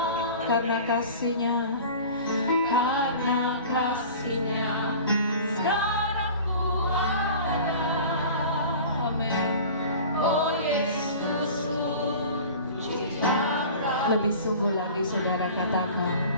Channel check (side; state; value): both; inverted; correlation -0.40